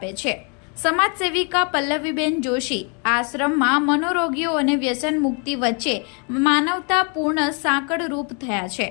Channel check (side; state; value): right; quieter; 36.5 dB